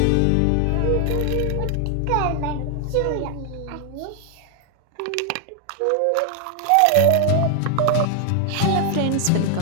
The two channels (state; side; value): different; both; correlation 0.00